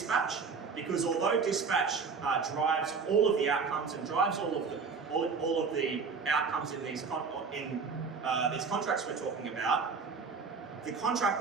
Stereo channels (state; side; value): quieter; left; 5.3 dB